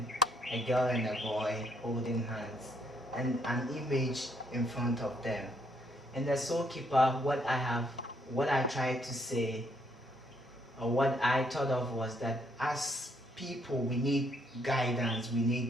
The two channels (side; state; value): both; normal; correlation 0.71